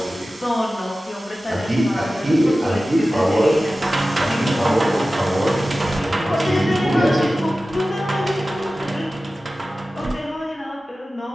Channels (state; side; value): normal; both; correlation 0.95